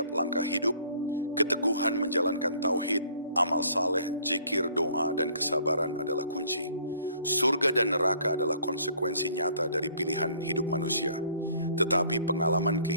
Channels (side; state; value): both; inverted; correlation -0.58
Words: langkah hidup, keteguhan menjalankan tauhid, amal saleh, zikir, doa, dan kesabaran adalah kunci. Surga dan neraka adalah konsekuensi nyata dari pilihan hidup manusia. Tetapi pengalaman